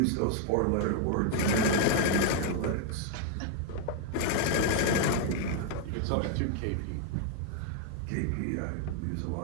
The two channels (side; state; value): both; different; correlation 0.00